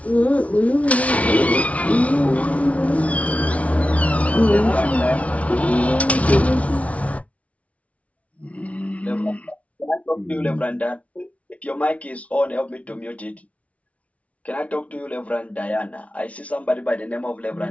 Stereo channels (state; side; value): late; right; 0.065 ms